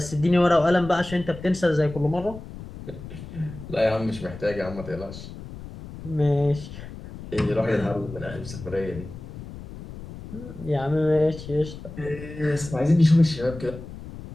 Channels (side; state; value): left; noise; rumble, 13 dB below the sound